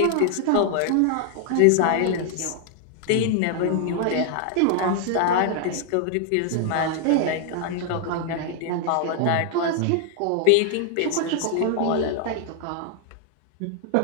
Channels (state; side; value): different; both; correlation 0.00